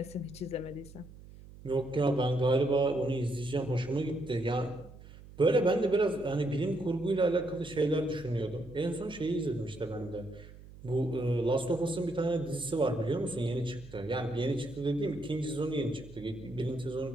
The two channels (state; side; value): noise; right; hum, 18 dB below the sound